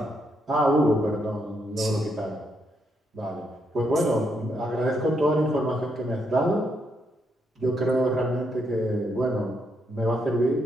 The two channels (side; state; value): both; normal; correlation 0.78